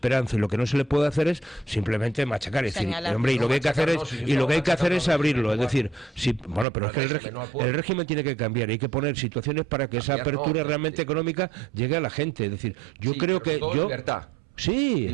y lo que no se le puede hacer es simplemente machacar, es decir, hombre, y lo que hay que hacer es abrirlo, es decir, pero es que el régimen tiene que cambiar, hay que poner situaciones para que esa apertura realmente económica llegue a la gente, es decir, yo creo que libertad. Sí,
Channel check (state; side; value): drops out; left; at 6.7 s